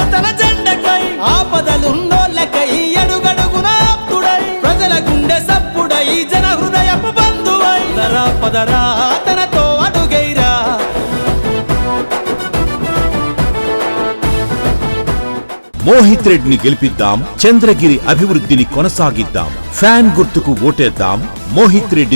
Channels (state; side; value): inverted; both; correlation -1.00